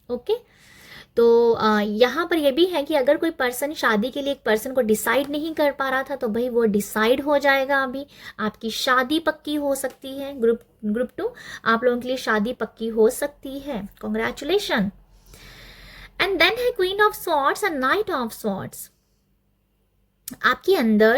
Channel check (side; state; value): both; identical; correlation 1.00